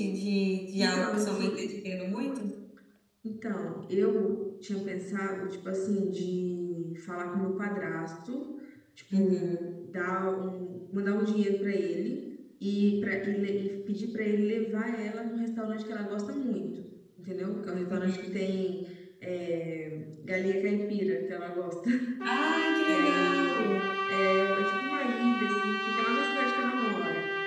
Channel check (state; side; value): identical; both; correlation 1.00